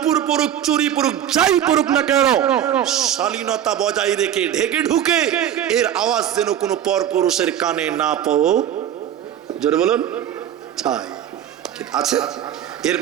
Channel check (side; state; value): left; quieter; 10.5 dB